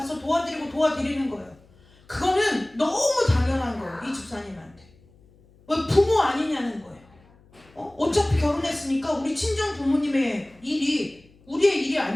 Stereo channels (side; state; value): left; noise; hum, 29 dB below the sound